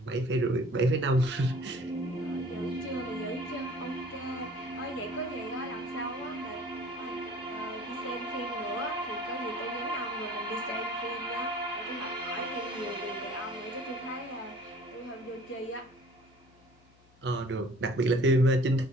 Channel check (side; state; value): left; noise; hum, 29 dB below the sound